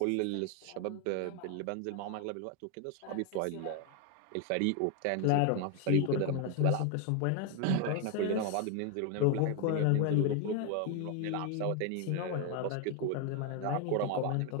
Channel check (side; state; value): both; different; correlation 0.01